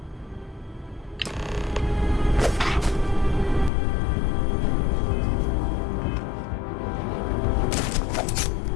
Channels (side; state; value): right; drops out; at 3.7 s